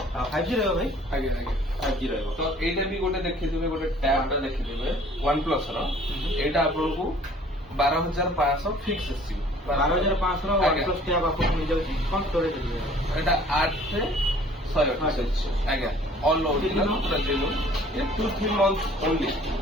5G ରହିବ ଭାଇ ଆଜ୍ଞା ଆଜ୍ଞା 5G ରହିବ ତ ଏଇଟା ବି ଗୋଟେ ଦେଖିଥିବେ ଗୋଟେ ଟ୍ୟାବ ଟା ଦେଖିଥିବେ OnePlus ର ଏଇଟା ଆପଣଙ୍କୁ 12,500 ଫିକ୍ସ ଆସିବ 12,500 ର ଆଜ୍ଞା। OnePlus ଟ୍ୟାବ ଆପଣଙ୍କୁ ମିଳିଯାଉଛି କଣ ଷ୍ଟୋରେଜ ଏଇଟା 8,128 ଆଜ୍ଞା ଅଲ୍ ଓରିଜିନାଲ ପୁରା ଜେନୁଇନ୍ ଏ 2-3 ମନ୍ଥ ଓନ୍ଲି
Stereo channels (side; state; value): both; normal; correlation 0.53